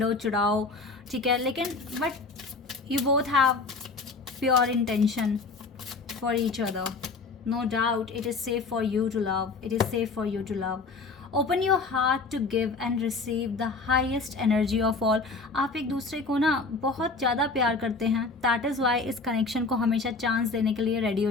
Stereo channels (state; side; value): quieter; right; 4.0 dB